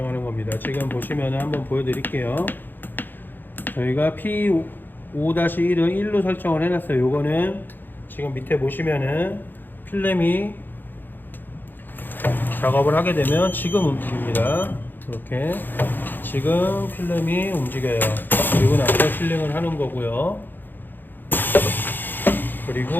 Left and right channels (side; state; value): right; late; 0.091 ms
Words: 겁니다. 지금 보시면 한번 보여드릴게요. 저희가 P5-1은 1로 설정을 해놨어요. 요거는 지금 밑에 보시면은 필름이 작업을 하게 되면 지금 움직입니다. 이렇게 지금 필름이 움직여요. 그리고 나서 실링을 하는 거고요.